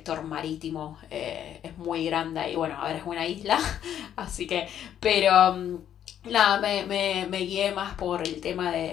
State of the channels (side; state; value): right; quieter; 10.1 dB